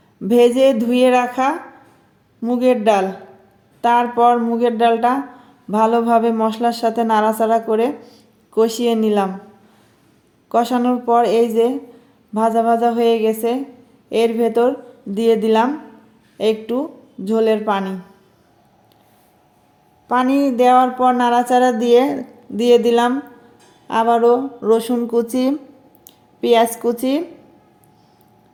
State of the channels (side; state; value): both; identical; correlation 1.00